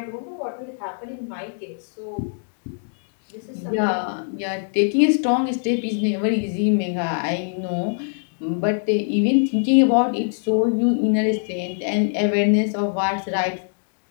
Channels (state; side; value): silent; right; digital silence